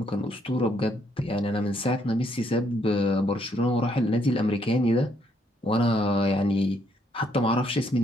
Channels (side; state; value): both; normal; correlation 0.71